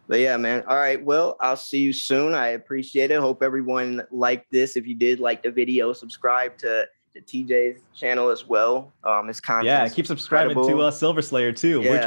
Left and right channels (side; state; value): both; inverted; correlation -1.00